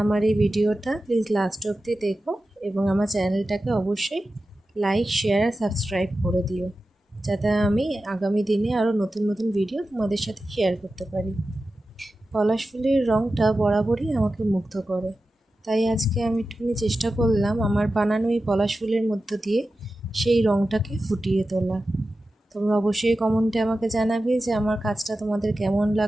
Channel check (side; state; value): both; normal; correlation 0.93